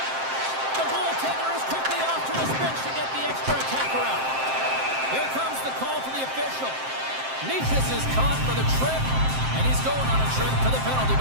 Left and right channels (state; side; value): late; left; 7.6 ms